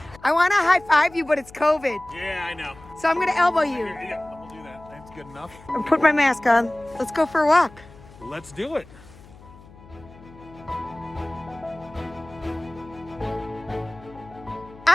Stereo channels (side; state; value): left; noise; hum, 21 dB below the sound